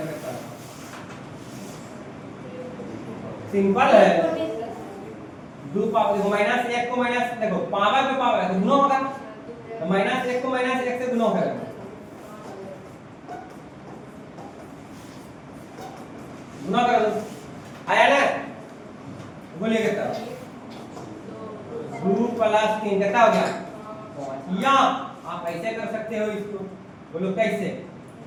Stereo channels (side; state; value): both; identical; correlation 1.00